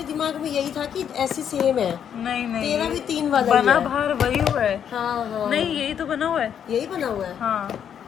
दिमाग में यही था कि ऐसे सेम है। नहीं नहीं, तेरा भी 3 वाला ही बना है। बाहर वही हुआ है। हाँ हाँ नहीं यही तो बना हुआ है। यही बना हुआ है। हाँ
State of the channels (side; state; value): right; quieter; 8.6 dB